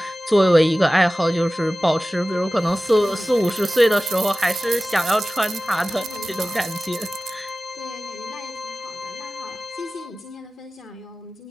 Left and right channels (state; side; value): normal; both; correlation 0.96